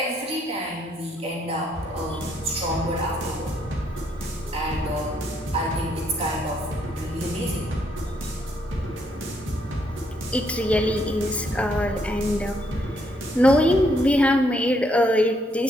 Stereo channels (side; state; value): both; normal; correlation 0.72